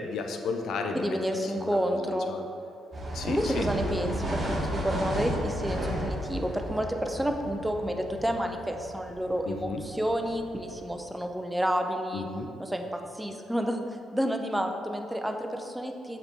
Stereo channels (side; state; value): both; normal; correlation 0.85